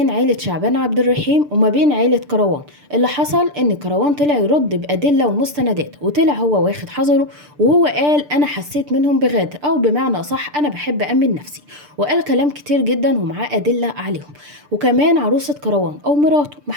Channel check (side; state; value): left; late; 6.8 ms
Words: عيلة شعبان عبد الرحيم وما بين عيلة كروان. اللي حصل ان كروان طلع يرد بأدلة ومستندات، وطلع هو واخد حذره، وهو قال انا حسيت منهم بغادر، او بمعنى اصح انا بحب امن نفسي، وقال كلام كتير جدا ومعاه أدلة عليهم. وكمان عروسة كروان او مراته،